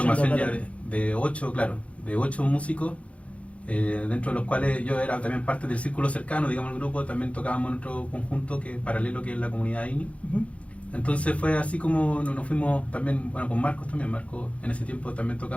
ya de 8, claro, de 8 músicos, dentro de los cuales yo era también parte del círculo cercano, digamos, el grupo. También tocábamos en otro conjunto paralelo, que es la comunidad INI. Entonces fue así como nos fuimos también, bueno, con Marcos también. Marcos en ese tiempo también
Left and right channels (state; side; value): late; right; 0.064 ms